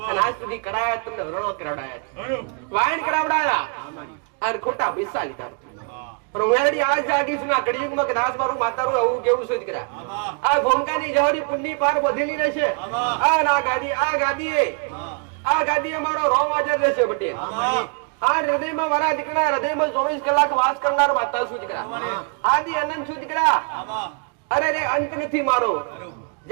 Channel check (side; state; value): left; quieter; 37.8 dB